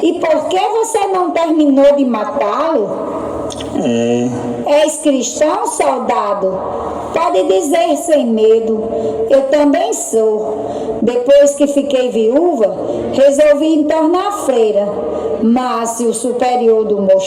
E por que você não terminou de matá-lo? És cristão, soldado? Pode dizer sem medo. Eu também sou. Depois que fiquei viúva, resolvi entornar freira. Mas o superior do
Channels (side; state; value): both; identical; correlation 1.00